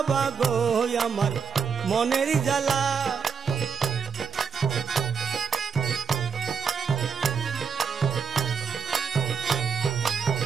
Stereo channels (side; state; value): left; quieter; 6.2 dB